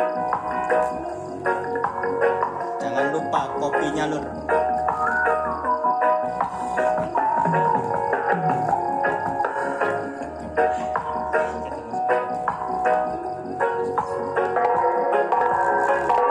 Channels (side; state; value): both; identical; correlation 1.00